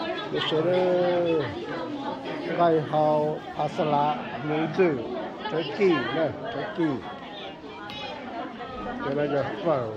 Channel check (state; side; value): identical; both; correlation 1.00